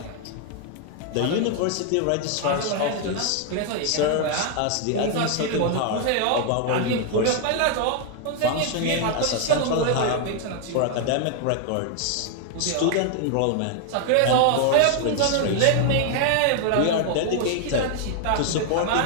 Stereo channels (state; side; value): different; both; correlation 0.00